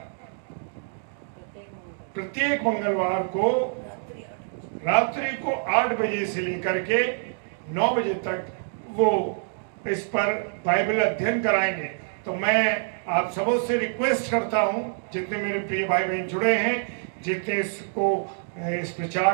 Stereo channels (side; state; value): left; silent; digital silence